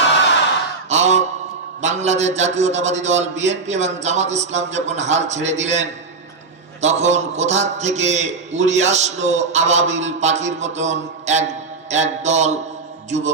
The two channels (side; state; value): left; quieter; 4.2 dB